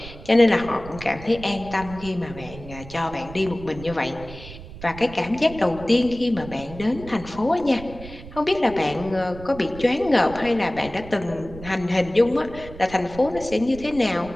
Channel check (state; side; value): noise; right; rumble, 15 dB below the sound